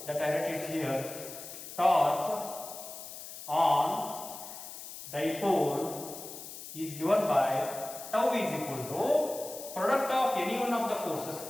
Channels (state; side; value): noise; left; hiss, 11 dB below the sound